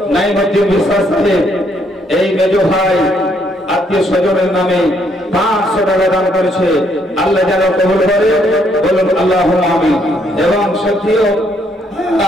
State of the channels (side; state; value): both; normal; correlation 0.71